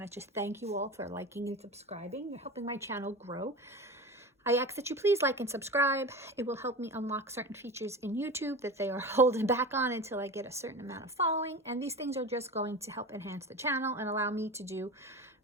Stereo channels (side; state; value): both; normal; correlation 0.30